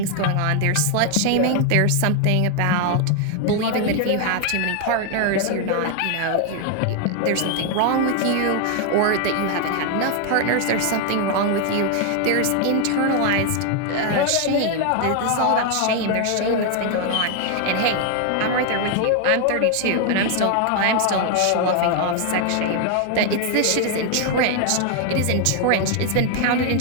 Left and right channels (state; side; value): different; both; correlation 0.00